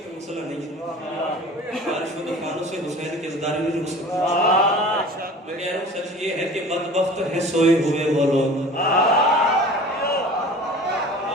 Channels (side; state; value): both; normal; correlation 0.41